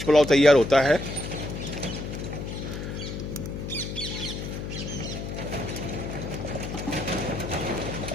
पुलाव तैयार होता है।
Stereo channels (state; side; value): noise; left; hum, 6 dB below the sound